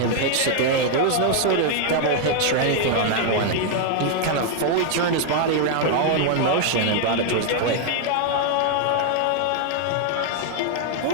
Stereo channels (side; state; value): both; different; correlation 0.00